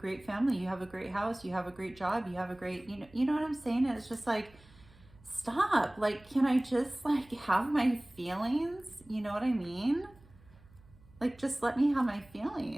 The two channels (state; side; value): noise; right; hum, 26 dB below the sound